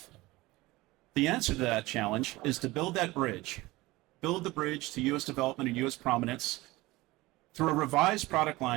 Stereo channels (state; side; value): quieter; left; 20.0 dB